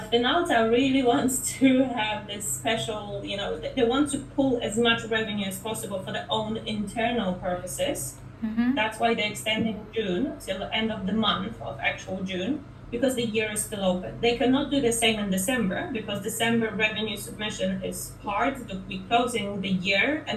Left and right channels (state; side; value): identical; both; correlation 1.00